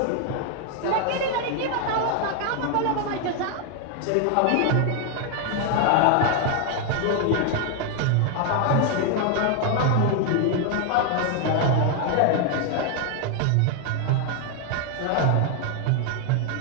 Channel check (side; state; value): both; different; correlation 0.00